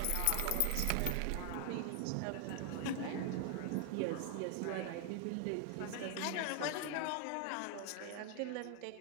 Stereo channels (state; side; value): different; both; correlation 0.00